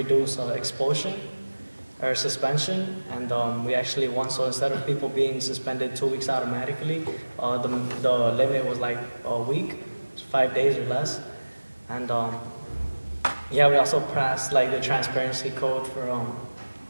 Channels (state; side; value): inverted; both; correlation -1.00